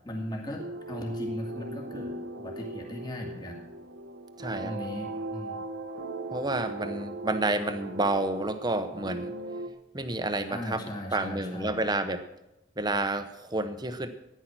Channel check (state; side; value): normal; both; correlation 0.33